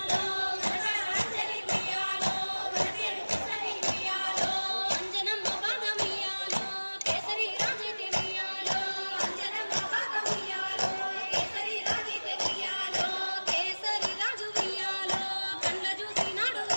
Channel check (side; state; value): both; inverted; correlation -1.00